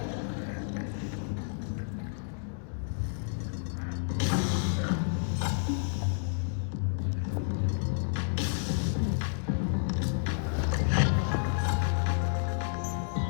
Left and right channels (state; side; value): silent; right; digital silence